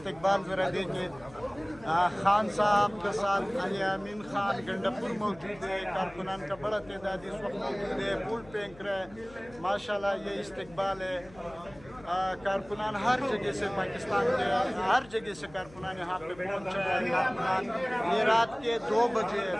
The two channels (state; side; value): noise; left; hum, 22 dB below the sound